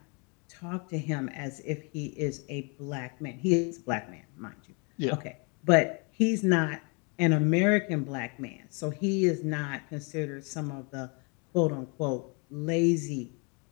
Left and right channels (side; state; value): right; quieter; 34.0 dB